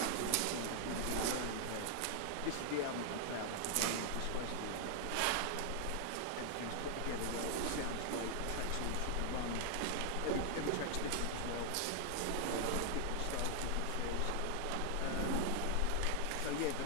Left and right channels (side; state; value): both; different; correlation 0.00